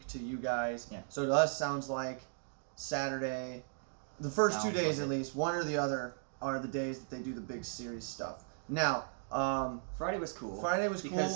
to you guys. Yeah. So to us, sounds like Saturday, the first 2 days at least, one or the other, are the days that they do the big series stuff. Now, Friday was cool.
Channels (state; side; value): silent; left; digital silence